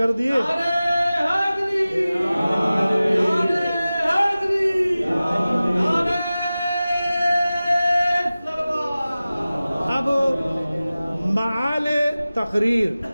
دیے۔ اب معال تقریر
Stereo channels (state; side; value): inverted; both; correlation -0.97